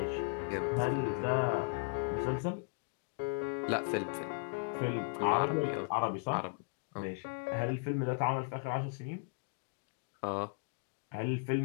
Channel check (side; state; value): right; quieter; 39.3 dB